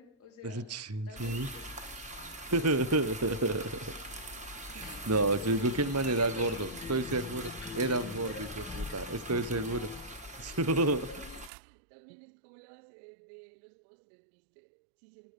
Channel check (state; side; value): drops out; left; at 11.5 s